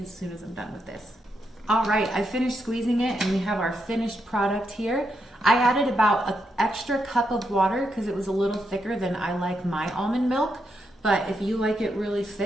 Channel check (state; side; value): normal; both; correlation 0.82